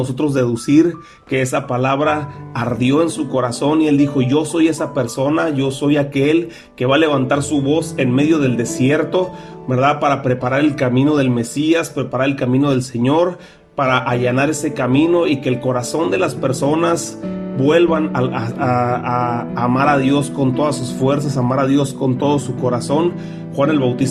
deducir que esa palabra ardió en su corazón y él dijo: yo soy esa persona, yo soy aquel que va a levantar su voz en medio del desierto, ¿verdad? Para preparar el camino del Mesías, preparar el camino del Señor, para allanar ese camino y que el corazón de las personas vuelvan a amar a Dios con todas sus fuerzas, amar a Dios con todo su corazón. Juan el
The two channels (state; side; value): identical; both; correlation 1.00